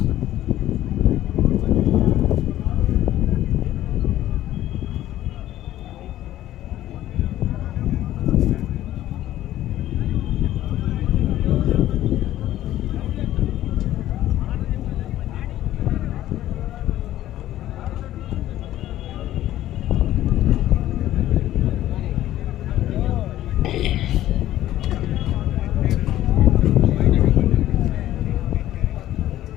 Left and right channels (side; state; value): right; quieter; 13.6 dB